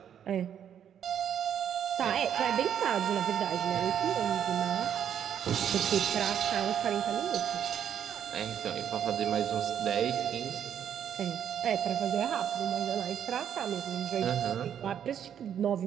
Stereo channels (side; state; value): left; quieter; 9.1 dB